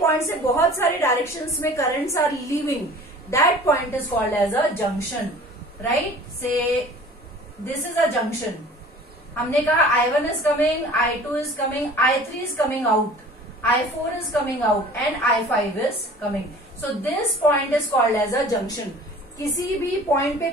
से बहुत सारे डायरेक्शंस में currents are leaving, that point is called as a junction, right? So this is a junction. हमने कहा I1 is coming, I2 is coming, I3 is coming out, I4 is coming out and I5 is coming. So this point is called as a junction. किसी भी point पे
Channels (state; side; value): normal; both; correlation 0.45